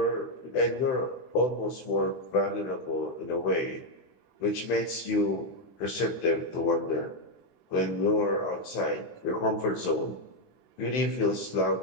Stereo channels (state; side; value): late; right; 15 ms